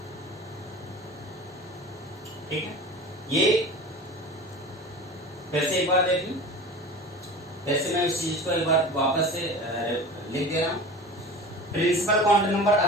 ठीक है, ये फिर से एक बार देख लीजिए। जैसे मैं इस चीज को एक बार वापस से लिख दे रहा हूँ। प्रिंसिपल क्वांटम नंबर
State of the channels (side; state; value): both; normal; correlation 0.35